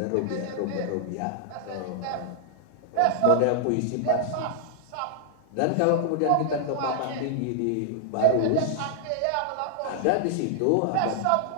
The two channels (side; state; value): both; different; correlation -0.01